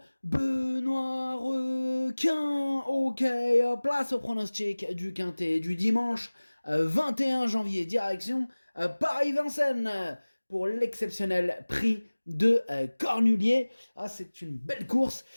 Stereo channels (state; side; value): inverted; both; correlation -1.00